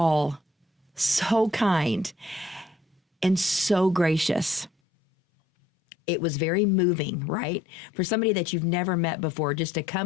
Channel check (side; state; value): right; drops out; at 4.7 s